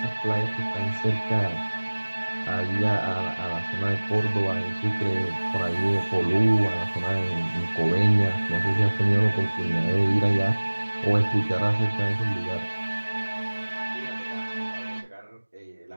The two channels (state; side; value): inverted; both; correlation -1.00